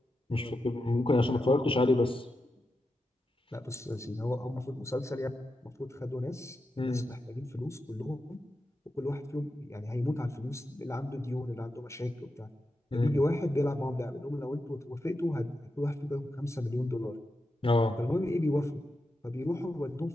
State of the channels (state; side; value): normal; both; correlation 0.88